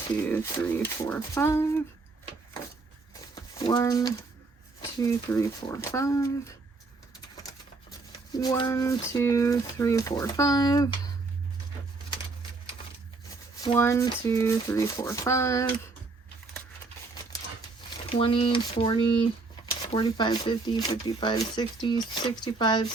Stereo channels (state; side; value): quieter; left; 3.8 dB